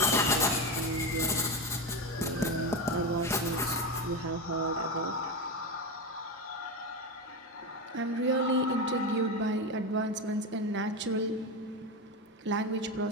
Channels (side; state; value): both; normal; correlation 0.17